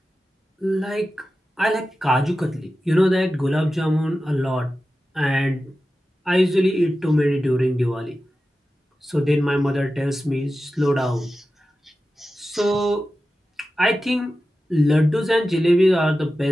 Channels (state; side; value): normal; both; correlation 0.93